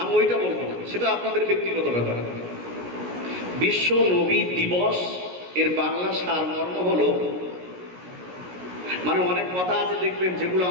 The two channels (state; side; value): late; left; 17 ms